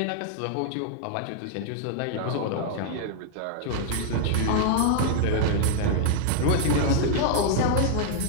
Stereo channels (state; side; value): different; both; correlation -0.01